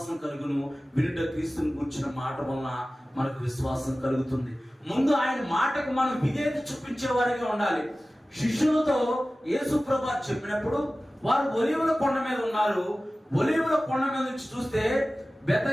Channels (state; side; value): normal; both; correlation 0.96